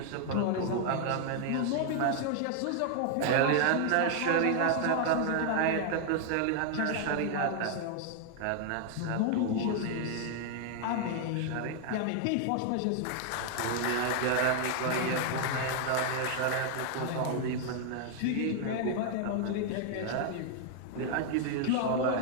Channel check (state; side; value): different; both; correlation 0.00